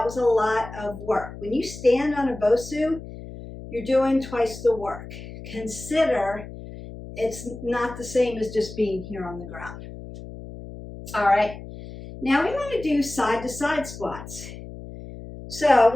was a lot of work. When you stand on a BOSU, you're doing twice the work. Consider it's not the same as just being here on the ground. All right, now we want to do side-to-side squats. So I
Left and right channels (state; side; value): noise; left; hum, 13 dB below the sound